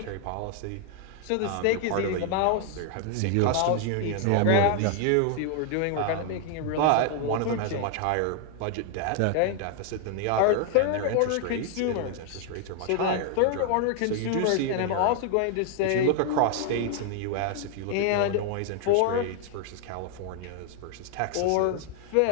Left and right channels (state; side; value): different; both; correlation 0.00